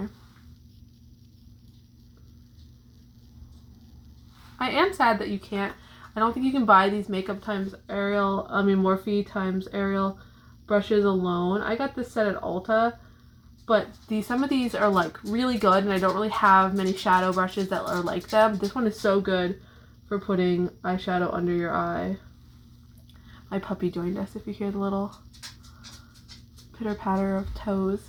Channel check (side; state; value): both; identical; correlation 1.00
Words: I am sad that you can't, I don't think you can buy these Makeup x Ariel, Morphe x Ariel brushes alone. I got this set at Ulta, but some of these are like really good, and I don't really have many shadow brushes that are like them. This one is so good for putting eyeshadow under your eye. My puppy joined us, if you hear the little pitter patter of toes.